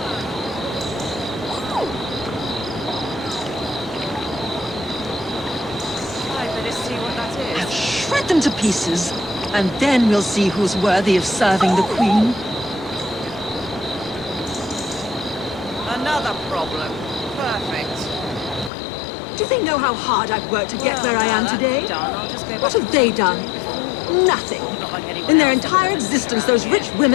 I'll shred them to pieces. And then we'll see who's worthy of serving the Queen. Another problem. Perfect. Do they know how hard I've worked to get where I am today? What have they done? Nothing. In their entire existence, those rich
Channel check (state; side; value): drops out; right; at 18.7 s